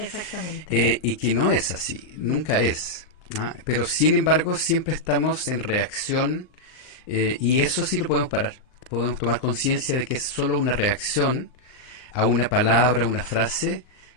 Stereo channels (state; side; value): late; right; 39 ms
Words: Y que no es así, nunca es. Pero sin embargo siempre estamos en reacción, y eso sí lo podemos parar. Podemos tomar conciencia de que es solo una reacción a una palabra, una frase